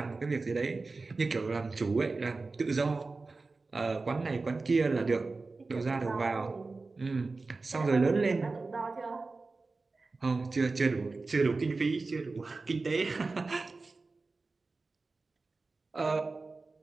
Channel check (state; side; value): quieter; left; 3.7 dB